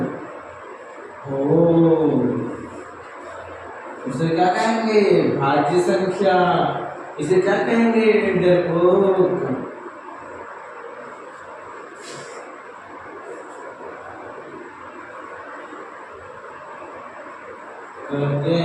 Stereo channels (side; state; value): both; identical; correlation 1.00